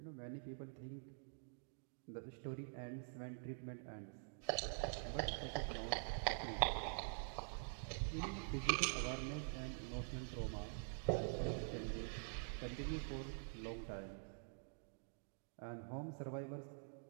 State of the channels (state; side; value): silent; left; digital silence